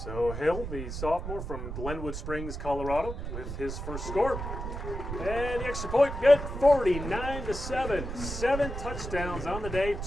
So Hill, the sophomore from Glenwood Springs, Colorado, with his first score. And the extra point, good, 49-7. 7 touchdowns on the day,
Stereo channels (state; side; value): noise; right; rumble, 6 dB below the sound